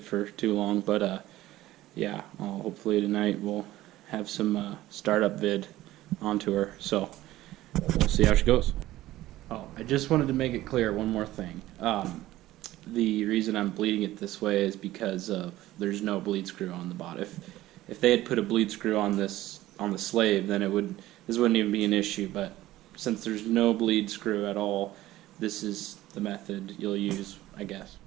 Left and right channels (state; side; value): quieter; left; 15.8 dB